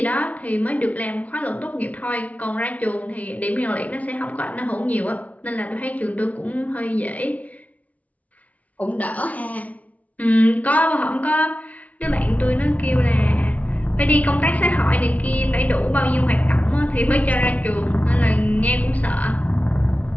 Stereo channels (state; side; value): late; right; 0.070 ms